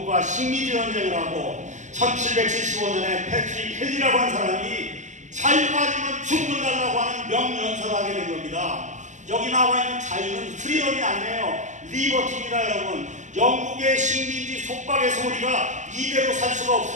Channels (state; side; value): late; left; 0.35 ms